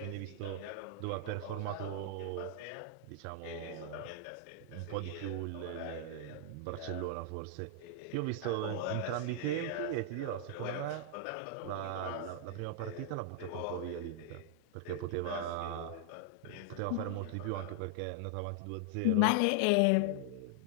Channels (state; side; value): different; both; correlation -0.01